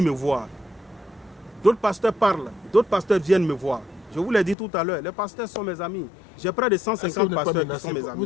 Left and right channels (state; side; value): drops out; right; at 4.5 s